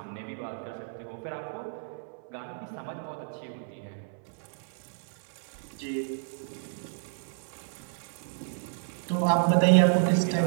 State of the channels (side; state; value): left; silent; 57 dB below the other